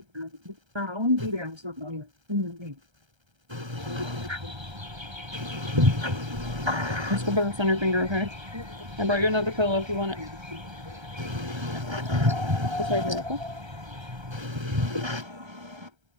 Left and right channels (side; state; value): left; late; 1.3 ms